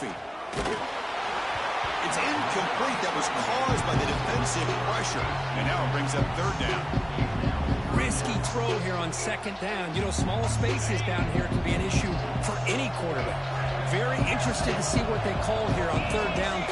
It's incomplete. That was caused by the defensive pressure. And now it brings up 3rd down. Risky throw here on 2nd down. You know, small spaces down here can be an issue for any quarterback. Very interested to see what they call here on 3rd down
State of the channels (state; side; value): identical; both; correlation 1.00